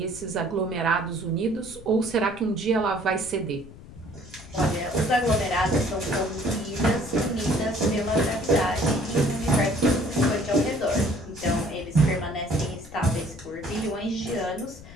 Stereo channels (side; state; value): left; noise; rumble, 17 dB below the sound